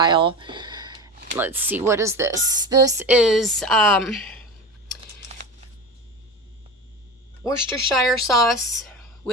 Let's see, what is this? This is Worcestershire sauce,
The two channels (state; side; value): normal; both; correlation 0.28